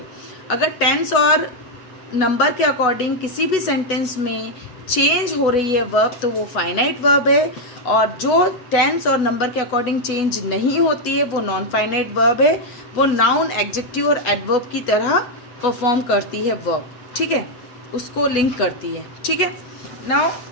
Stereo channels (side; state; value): right; late; 8.1 ms